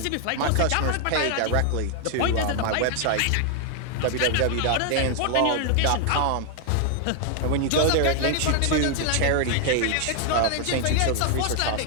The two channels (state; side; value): different; both; correlation 0.00